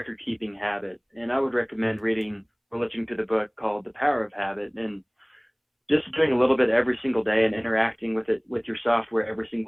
habit. And I would recommend reading or listening to the book called The Power of Habit, and just doing a little bit every single day and interacting with your software every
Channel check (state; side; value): identical; both; correlation 1.00